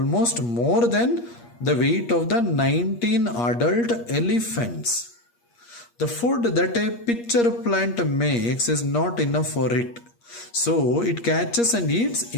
more than the weight of the 19 adult elephants. The food that a pitcher plant makes is not enough for it. So it catches and eats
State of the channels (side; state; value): right; late; 8.5 ms